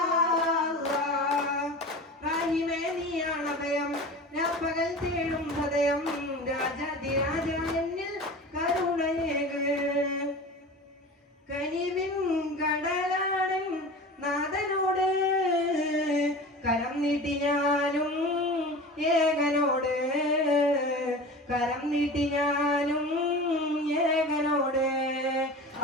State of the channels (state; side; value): normal; both; correlation 0.34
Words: അല്ലാഹ്. റഹീമേ നീയാണ് അഭയം, ഞാൻ പകൽ തേടും ഹൃദയം. രാജാതിരാജ എന്നിൽ കരുണയേക്, കനിവിൻ കടലാടൻ നാഥനോട് കരം നീട്ടി ഞാനും ഏകനോട്, കരം നീട്ടി ഞാനും ഏകനോട്.